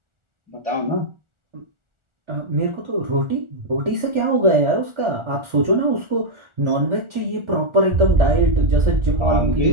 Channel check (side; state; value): left; late; 1.4 ms